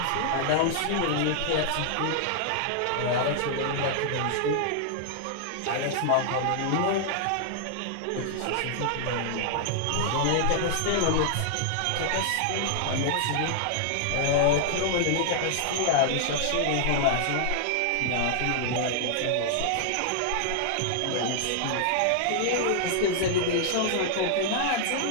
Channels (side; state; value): both; different; correlation -0.01